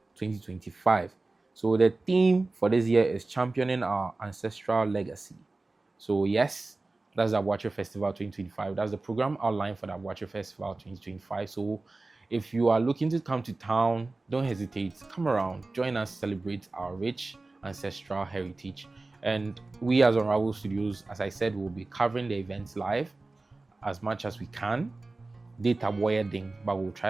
2025. So the theme for this year is championing our ancestral legacy. So yes, that's the Aboakyer Festival 2025. That's the program outline for the Aboakyer Festival 2025. So If you are looking to come to town, don't hesitate. Come around, join us, celebrate our rich ancestral heritage. And we as Unravel Studios, as I said, will be covering the events live as much as we can. Data wiring, but we'll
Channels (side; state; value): left; quieter; 3.3 dB